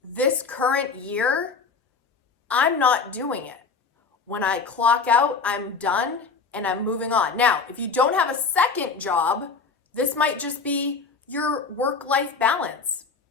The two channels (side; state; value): right; quieter; 4.9 dB